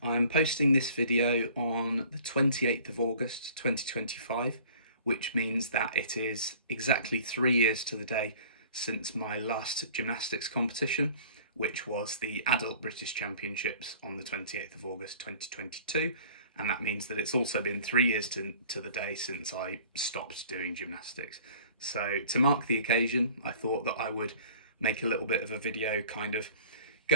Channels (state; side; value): inverted; both; correlation -0.49